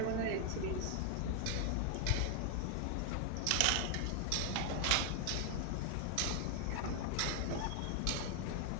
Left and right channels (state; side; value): different; both; correlation 0.00